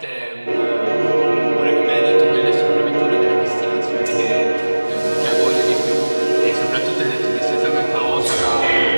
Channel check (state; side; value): inverted; both; correlation -1.00